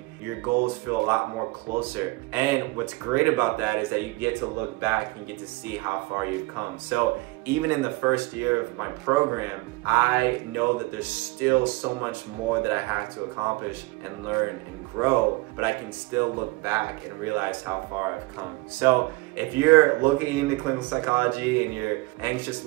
Your goals feel a lot more closer. And what's great about that is that you get to look back and get to see how far you've come. So even in the first year of my program, I know that there's still so much more that I have to accomplish and learn and grow, but I can still look back back and realize how far I've come. So if you're looking into clinical psychology and you're anxious a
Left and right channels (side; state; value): left; quieter; 23.1 dB